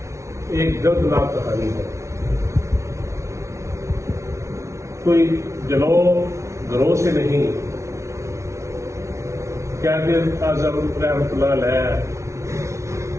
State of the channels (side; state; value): left; late; 0.14 ms